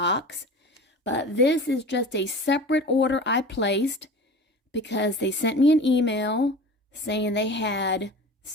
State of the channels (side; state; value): both; normal; correlation 0.36